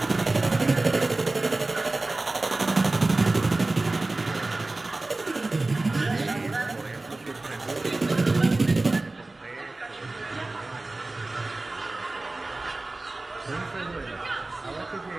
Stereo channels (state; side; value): quieter; left; 3.1 dB